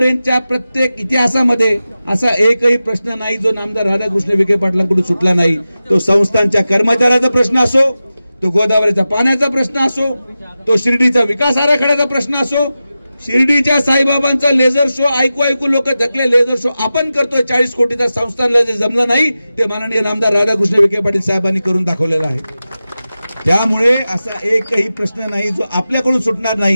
प्रत्येक इतिहासामध्ये असा एकही प्रश्न नाही जो नामदार राधाकृष्ण विखे पाटलांकडून सुटला नाही. तो संस्थांच्या कर्मचाऱ्याचा प्रश्न असो, तो गोदावरीचा पाण्याचा प्रश्न असो, तो शिर्डीचा विकास आराखड्याचा प्रश्न असो, शिर्डीच्या साईबाबांचा लेझर शो ऐकू लोक थकले. लेझर शो आपण करतोय 40 कोटीचा, संस्थांना जे जमलं नाही ते माननीय नामदार राधाकृष्ण विखे पाटील साहेबांनी करून दाखवलेला आहे. त्यामुळे असा एकही प्रश्न नाही जो आपल्याकडून सुटणार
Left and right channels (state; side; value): inverted; both; correlation -0.93